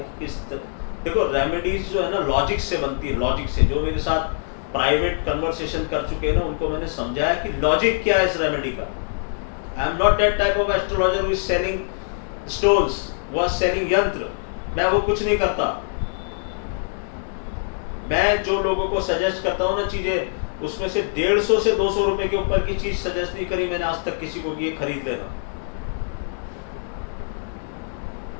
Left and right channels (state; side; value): silent; right; 63 dB below the other